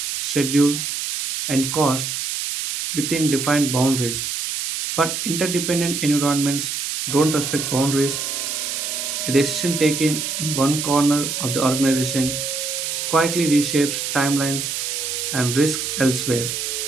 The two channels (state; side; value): noise; right; hiss, 3 dB below the sound